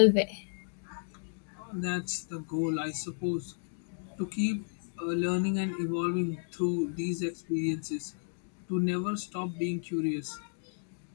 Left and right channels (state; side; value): silent; right; digital silence